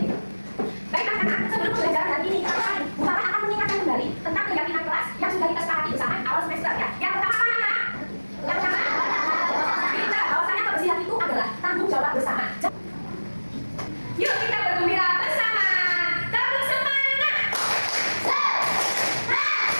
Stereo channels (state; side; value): inverted; both; correlation -1.00